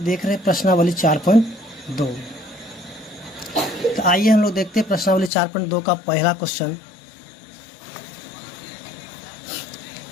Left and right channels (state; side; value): drops out; right; at 5.3 s